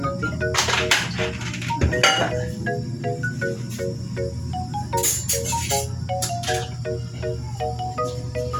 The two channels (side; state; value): both; identical; correlation 1.00